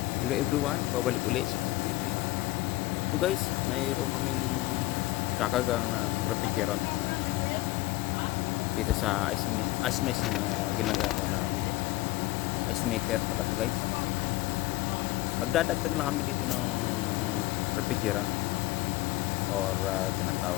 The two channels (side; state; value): right; quieter; 18.6 dB